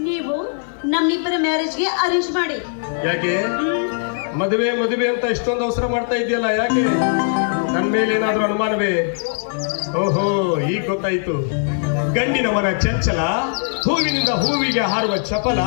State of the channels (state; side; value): silent; right; digital silence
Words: ನೀವು ನಮ್ಮಿಬ್ಬರ ಮ್ಯಾರೇಜ್ಗೆ ಅರೇಂಜ್ ಮಾಡಿ. ಯಾಕೆ ಮದುವೆ ಅಂತ ಇಷ್ಟೊಂದು ಅವಸರ ಮಾಡ್ತಾ ಇದೆಯಲ್ಲ? ಯಾಕೆ? ನನ್ನ ಮೇಲೆ ಏನಾದ್ರೂ ಅನುಮಾನವೇ? ಓಹೋ, ಈಗ ಗೊತ್ತಾಯ್ತು. ಗಂಡಿನ ಮನ ಚಂಚಲ, ಹೂವಿನಿಂದ ಹೂವಿಗೆ ಹಾರುವ ಚಪಲ.